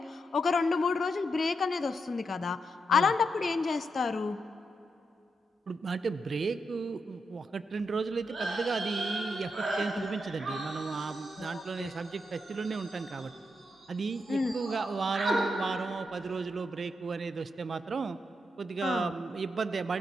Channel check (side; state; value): both; normal; correlation 0.83